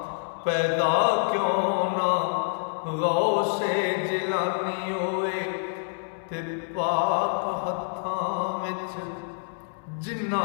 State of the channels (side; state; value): right; silent; 60 dB below the other